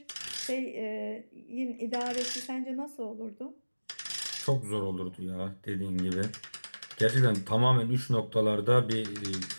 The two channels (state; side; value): inverted; both; correlation -1.00